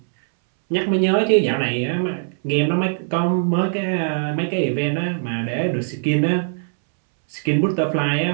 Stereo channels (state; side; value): silent; left; 65 dB below the other